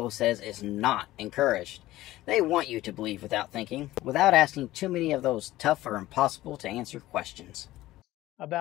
says is not encouraged. They want you to believe without thinking, without asking too many of those tough or impossible to answer questions.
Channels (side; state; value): right; quieter; 16.3 dB